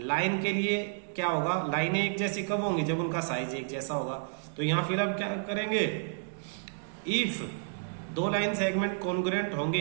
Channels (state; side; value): silent; left; digital silence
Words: के लिए क्या होगा? लाइनें एक जैसी कब होंगी? जब उनका साइज एक जैसा होगा। तो यहां फिर हम क्या करेंगे? इफ दो लाइन सेगमेंट कॉन्ग्रुएंट होंगे,